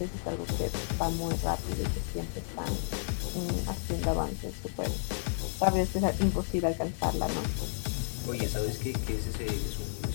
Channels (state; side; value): silent; right; digital silence